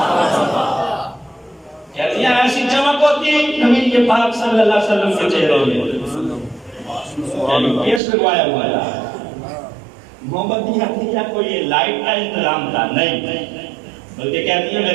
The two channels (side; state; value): left; drops out; at 8.0 s